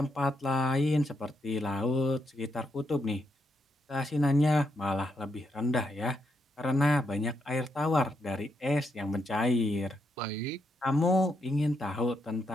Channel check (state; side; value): normal; both; correlation 0.80